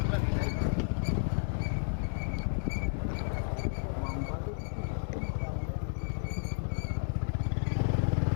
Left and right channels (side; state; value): right; silent; digital silence